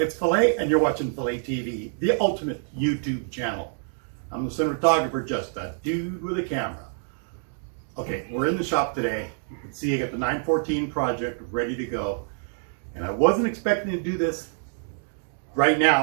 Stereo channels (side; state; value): left; silent; 61 dB below the other